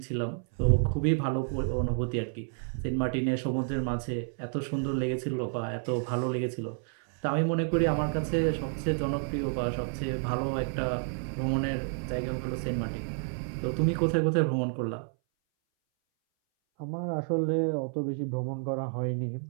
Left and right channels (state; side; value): silent; left; 58 dB below the other